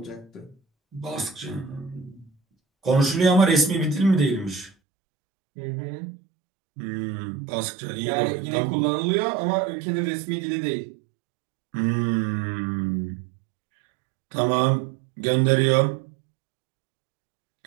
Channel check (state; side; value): drops out; left; at 4.7 s